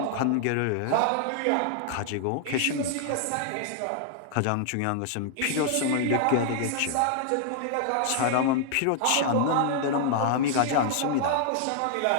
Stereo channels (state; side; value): different; both; correlation 0.00